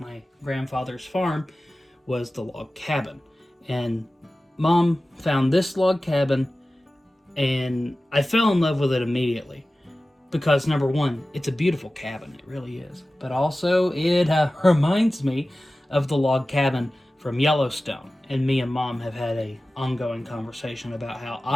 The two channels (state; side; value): normal; both; correlation 0.96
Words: grandfather's farm, was the log cabin. And Mom found this log cabin, and I fell in love with it immediately. Because, number one, it's a beautiful cabin. It really is. But also, it reminds me of the log cabin from Yellowstone. And me and Mom have had a ongoing conversation about how